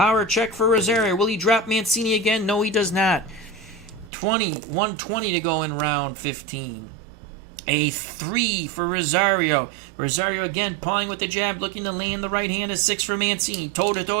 check for Rosario. Will he drop Mancini again? No, he does not. 120 to go in round 15. A 3 for Rosario. Rosario again pawing with the jab, looking to land the right hand. A 6 for Mancini. Toe-to-toe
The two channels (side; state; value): left; drops out; at 4.1 s